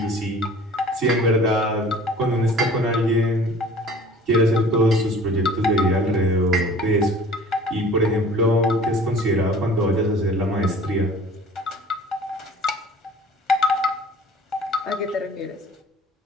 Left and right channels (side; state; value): both; normal; correlation 0.47